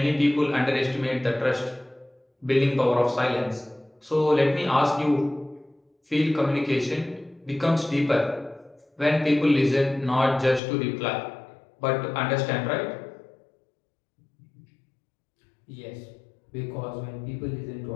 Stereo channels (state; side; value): drops out; right; at 10.6 s